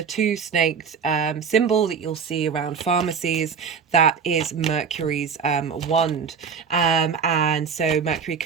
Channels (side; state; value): left; quieter; 6.1 dB